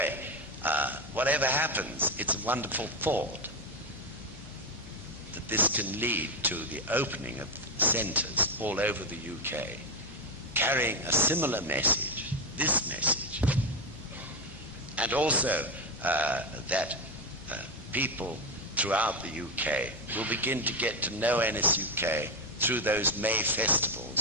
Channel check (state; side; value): noise; left; hum, 20 dB below the sound